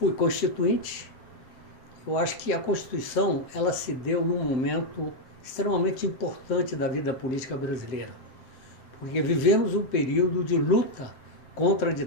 constituinte. Eu acho que a Constituição ela se deu num momento extremamente importante da vida política brasileira, porque vivemos um período de luta contra a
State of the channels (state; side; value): late; right; 7.7 ms